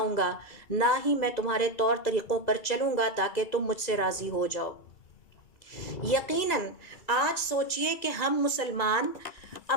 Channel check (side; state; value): right; late; 2.3 ms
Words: گا، نہ ہی میں تمہارے طور طریقوں پر چلوں گا تاکہ تم مجھ سے راضی ہو جاؤ۔ یقیناً آج سوچئے کہ ہم مسلمان